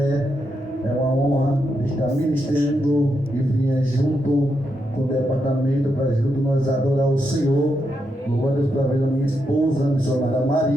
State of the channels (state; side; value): normal; both; correlation 0.83